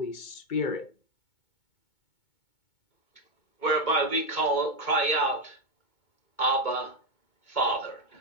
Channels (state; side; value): late; right; 2.2 ms